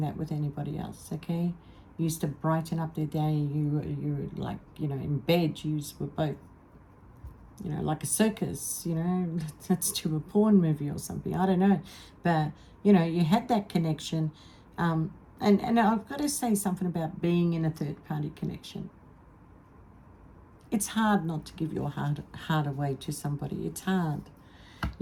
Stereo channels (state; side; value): identical; both; correlation 1.00